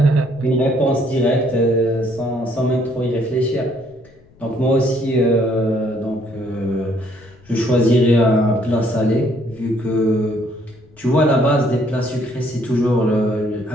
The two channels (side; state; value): left; noise; rumble, 28 dB below the sound